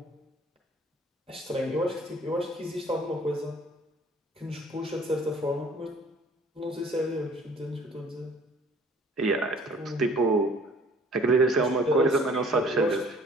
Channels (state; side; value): normal; both; correlation 0.54